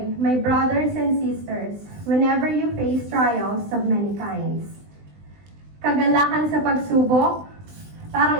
my brothers and sisters, whenever you face trials of many kinds. Kagalakan sa pagsubok,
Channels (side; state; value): left; late; 20 ms